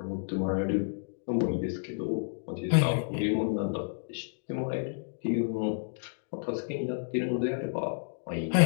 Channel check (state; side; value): silent; right; digital silence